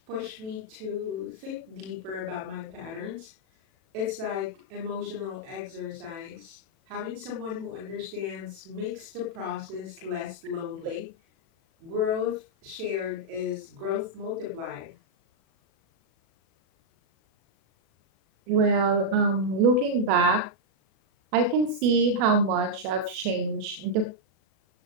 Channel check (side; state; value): left; late; 36 ms